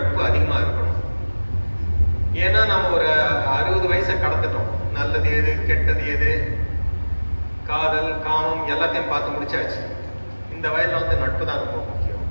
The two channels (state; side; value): inverted; both; correlation -1.00